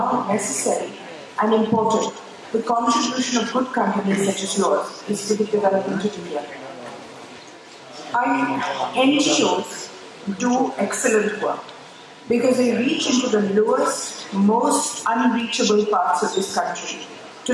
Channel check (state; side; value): identical; both; correlation 1.00